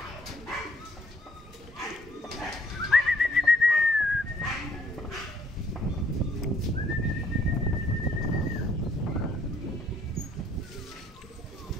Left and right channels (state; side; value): normal; both; correlation 0.64